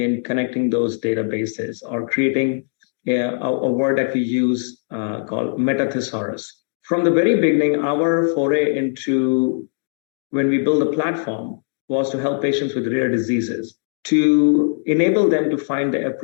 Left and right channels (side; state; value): right; silent; digital silence